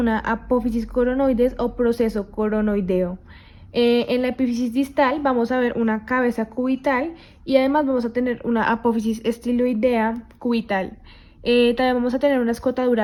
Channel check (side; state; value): both; identical; correlation 1.00